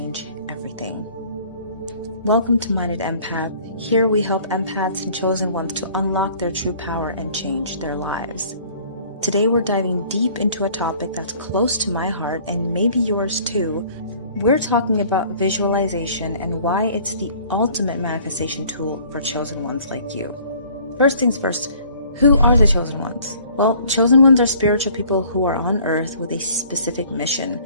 everything. Welcome to Minded Empath. Here we help empaths and chosen ones to unlock their true power and change their lives. Today we're diving deep into a topic that's close to my heart and maybe yours too. We're talking about visualization and why it's the ultimate manifestation tool for chosen ones like you. First things first, who are the chosen ones? Well, chosen ones are spiritual people who are on earth with a specific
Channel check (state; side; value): inverted; both; correlation -0.54